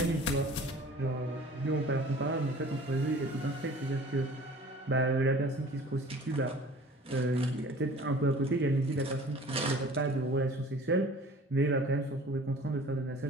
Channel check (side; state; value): both; normal; correlation 0.47